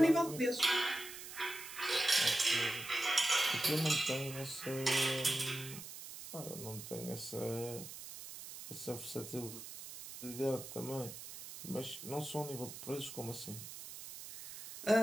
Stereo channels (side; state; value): right; noise; hiss, 11 dB below the sound